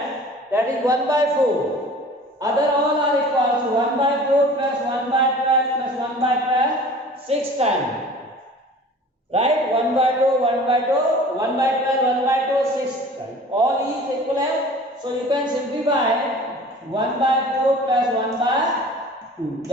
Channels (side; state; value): both; normal; correlation 0.44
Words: that is 1 by 4. Other all are equal. So 1 by 4 plus 1 by 12 plus 1 by 12, 6 times. Right? 1 by 2, 1 by 2, 1 by 12, 1 by 2, 6 times. All is equivalent. So you can simplify 1 by 4 plus 1 by 2.